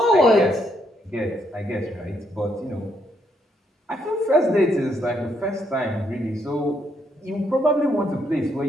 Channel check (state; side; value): normal; both; correlation 0.74